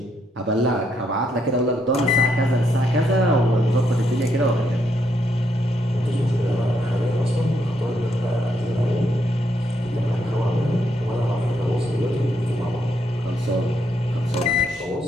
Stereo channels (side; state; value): both; normal; correlation 0.76